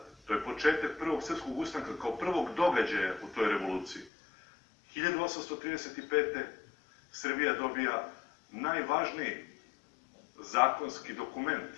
to je početak prvog srpskog ustanka kao prvog događaja u toj revoluciji. 1835. Srbija dobija najvažniji zakonski dokument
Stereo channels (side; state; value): right; drops out; at 4.1 s